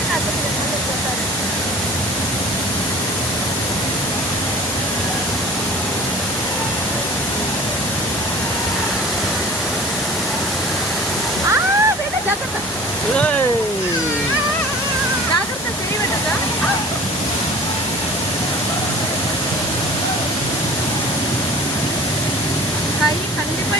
జాగ్రత్త చేయబడ్డదా? கை கண்டிப்பா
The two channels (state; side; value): normal; both; correlation 0.42